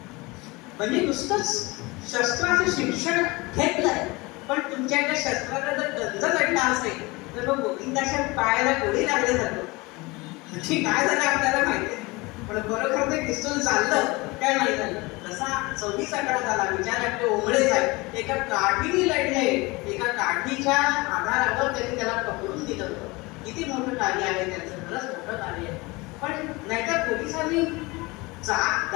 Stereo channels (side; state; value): right; quieter; 23.9 dB